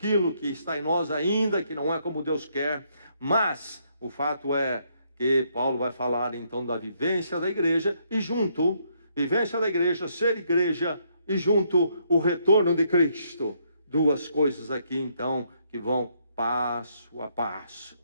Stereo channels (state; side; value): inverted; both; correlation -0.72